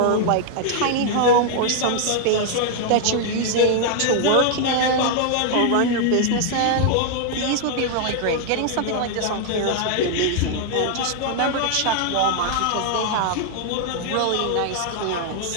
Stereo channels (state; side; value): different; both; correlation 0.00